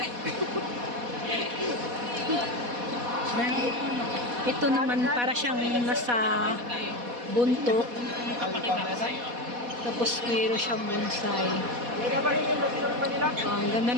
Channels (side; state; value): left; late; 4.1 ms